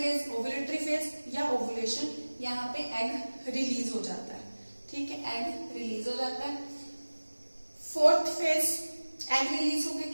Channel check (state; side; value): inverted; both; correlation -1.00